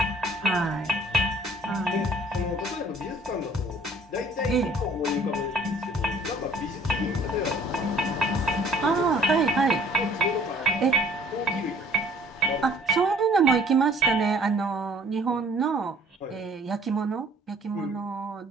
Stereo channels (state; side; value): normal; both; correlation 0.56